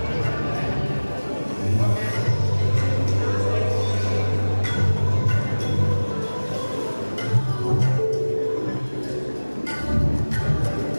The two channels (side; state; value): both; inverted; correlation -1.00